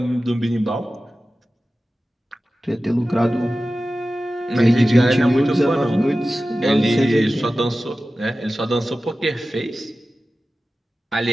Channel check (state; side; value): normal; both; correlation 0.95